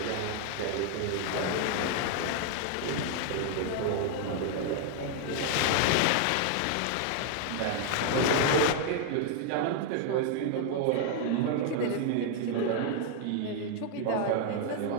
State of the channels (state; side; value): different; both; correlation 0.00